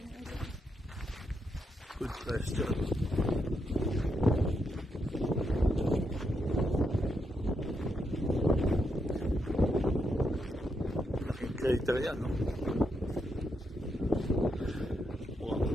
earlier? Good question. Laking crater yan, no?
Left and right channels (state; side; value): normal; both; correlation 0.81